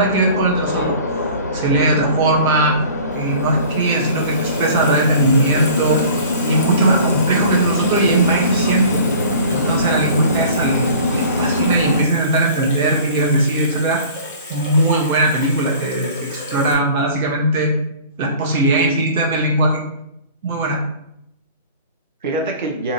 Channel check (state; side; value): inverted; both; correlation -0.45